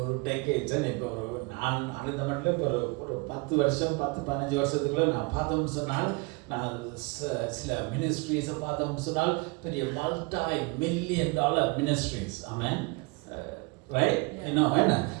டெக்கேட்ஸ் இப்போ நான் அந்த மட்டும் இப்போ ஒரு 10 வருஷம் 10-15 வருஷத்துக்குள்ள நான் பார்த்தோம்னு சொன்னால், நான் சில மினிஸ்ட்ரீஸை பார்த்தோம்னு சொன்னால் பெரிய $multi-million மினிஸ்ட்ரீஸ். ஆமென். ரைட்? இன்னும் என்ன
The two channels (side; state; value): left; quieter; 27.7 dB